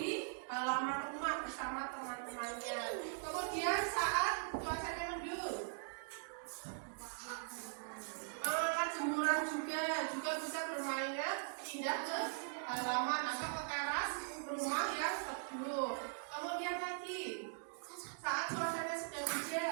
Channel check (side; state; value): left; silent; digital silence